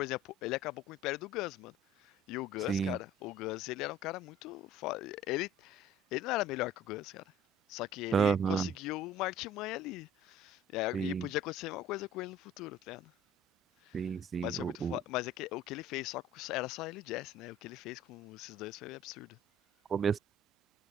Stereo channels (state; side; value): normal; both; correlation 0.48